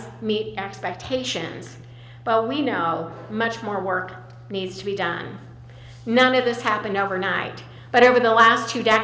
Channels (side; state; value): both; identical; correlation 1.00